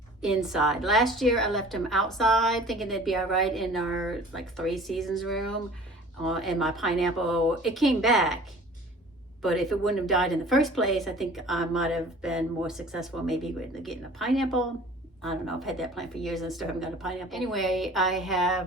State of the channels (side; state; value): both; normal; correlation 0.46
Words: inside. Last year I left them outside thinking they'd be all right in our like 3 seasons room, and my pineapple, it came back. But if it wouldn't have died in the first place, I think I might have been more successful maybe with getting a pineapple. I don't know, I've had that plant for years and still haven't got a pineapple. Anyway, I